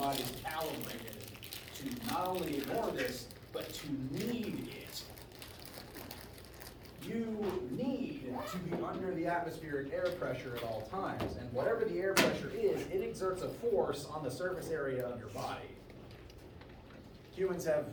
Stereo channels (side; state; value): both; identical; correlation 1.00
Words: is calibrated to not only ignore this, but to need it. You need to be under the atmospheric air pressure at all times, and whatever the air pressure is, it exerts a force on the surface area of your body. Humans have